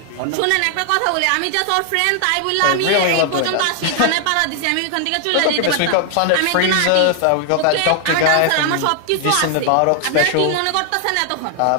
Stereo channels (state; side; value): different; both; correlation 0.00